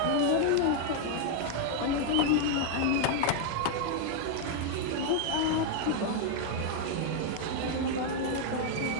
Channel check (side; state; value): both; different; correlation 0.00